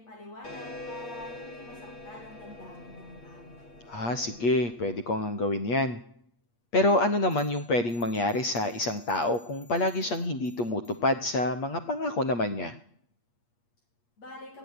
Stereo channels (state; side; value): late; right; 8.5 ms